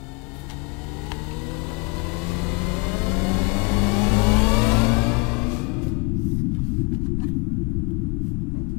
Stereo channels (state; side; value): quieter; right; 29.8 dB